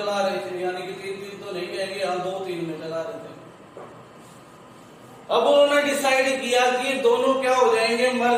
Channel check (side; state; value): both; identical; correlation 1.00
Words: रहे थे, यानी कि 3-3 तो नहीं कहेंगे, हम 2-3 में चला रहे थे। अब उन्होंने डिसाइड किया कि दोनों क्या हो जाएंगे,